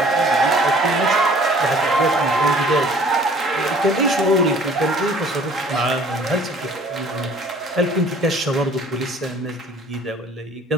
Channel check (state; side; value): normal; both; correlation 0.53